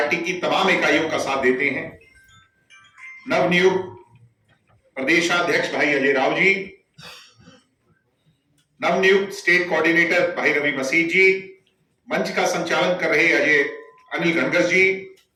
की तमाम इकाइयों का साथ देते हैं। नवनियुक्त प्रदेशाध्यक्ष भाई अजय राव जी, नवनियुक्त स्टेट कोऑर्डिनेटर भाई रवि मसीह जी, मंच का संचालन कर रहे अनिल घनगस जी,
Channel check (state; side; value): identical; both; correlation 1.00